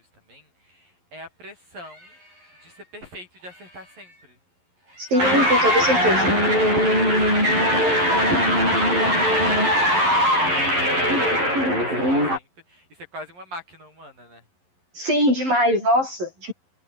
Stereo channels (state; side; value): late; left; 11 ms